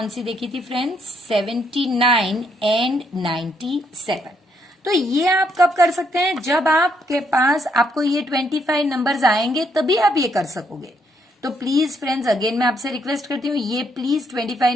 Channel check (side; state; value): both; normal; correlation 0.73